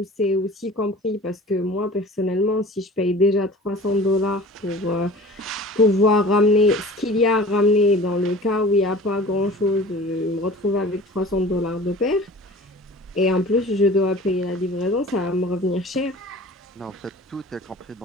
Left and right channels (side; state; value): both; normal; correlation 0.42